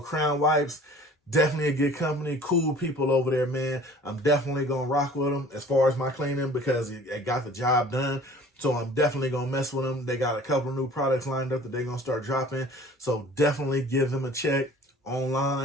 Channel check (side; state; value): both; normal; correlation 0.48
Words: Crown Wipes. Definitely a good company, cool people over there, man. I'm definitely gonna rock with them as far as my cleaning because it got the job done. So I'm definitely gonna mess with them. They got a couple of new products lined up that they're gonna start dropping. So definitely give them a check